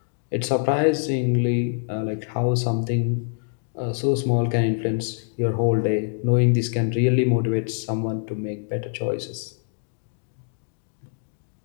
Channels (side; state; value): right; silent; digital silence